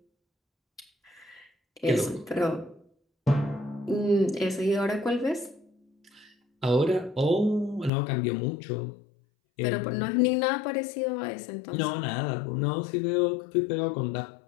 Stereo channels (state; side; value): drops out; right; at 7.9 s